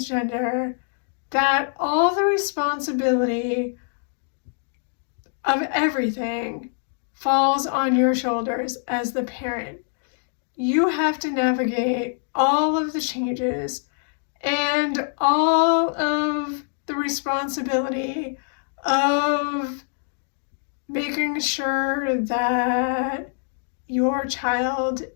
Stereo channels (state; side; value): silent; right; 62 dB below the other